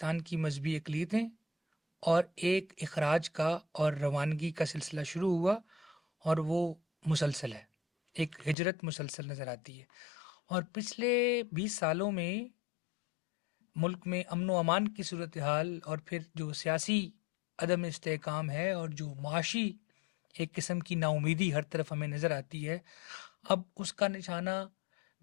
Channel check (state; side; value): drops out; right; at 8.6 s